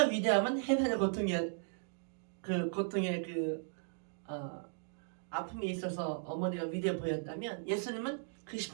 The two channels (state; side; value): silent; left; digital silence